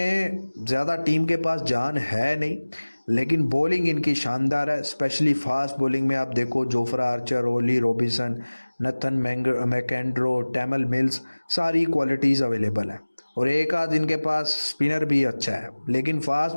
ज़्यादा टीम के पास जान है नहीं, लेकिन बॉलिंग इनकी शानदार है, स्पेशली फास्ट बॉलिंग में आप देखो Jofra Archer, Ollie Robinson, Nathan मैकेंड्रो, टैमल mills, सारी क्वालिटीज़ अवेलेबल है। और एक आध इनके पास स्पिनर भी अच्छा है, लेकिन फास्ट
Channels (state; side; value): inverted; both; correlation -1.00